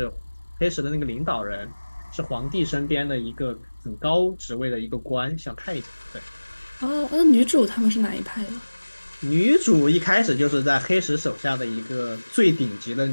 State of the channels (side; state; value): both; inverted; correlation -1.00